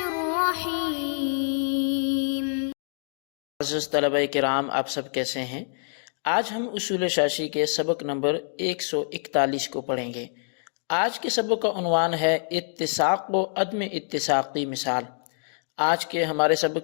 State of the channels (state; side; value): silent; right; digital silence